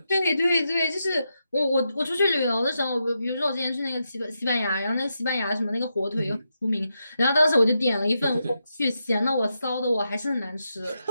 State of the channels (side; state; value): both; inverted; correlation -0.85